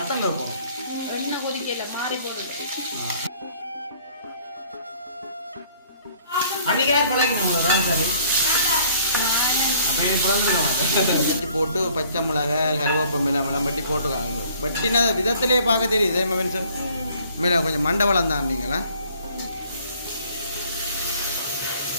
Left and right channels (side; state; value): both; inverted; correlation -0.57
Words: போணும். எண்ணெய் கொதிக்கல மாறி போடுது. அன்னைக்கு பழகிட்டு ரால் கறி வச்சு போட்டு பச்சை மிளகா கருவேப்பமில்லை மிளம்பட்டி போட்டுக்காங்க. பட்டினா விதத்திலே பார்க்க தெரியுது சார். மேலே கொஞ்சம் மண்டபலம் தான் நீங்களா.